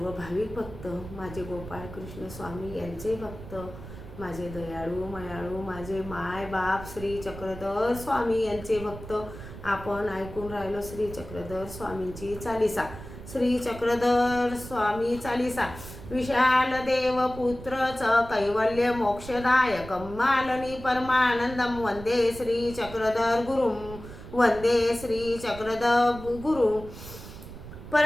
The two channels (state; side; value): noise; right; rumble, 13 dB below the sound